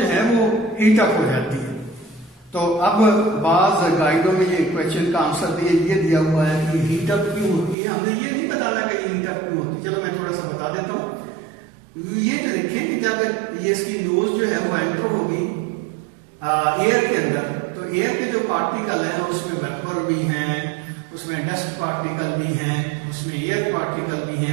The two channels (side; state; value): left; drops out; at 7.8 s